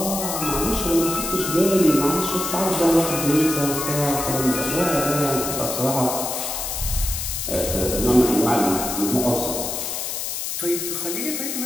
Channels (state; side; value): noise; left; hiss, 4 dB below the sound